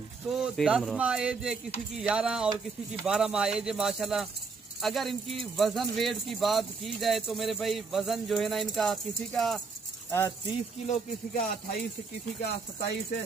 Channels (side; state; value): left; quieter; 4.7 dB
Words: तो 10 माह एज है, किसी की 11 और किसी की 12 माह एज है माशाल्लाह। अगर इनकी वजन वेट की बात की जाए तो मेरे भाई वजन जो है ना इनका किसी का 30 किलो, किसी का 28, किसी का 27 है।